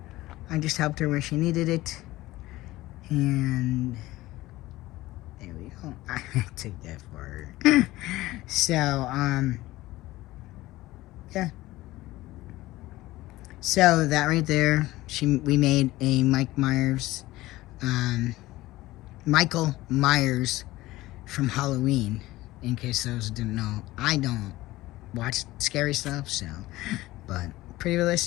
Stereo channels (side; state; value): right; quieter; 17.7 dB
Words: I just helped her where she needed it. And there we go. I took that for her. So, yeah. So, that right there, we made a Michael Myers from Halloween, in case those didn't know. I don't watch scary stuff, so, but pretty